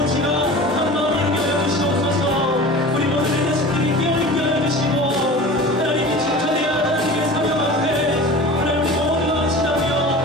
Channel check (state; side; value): normal; both; correlation 0.37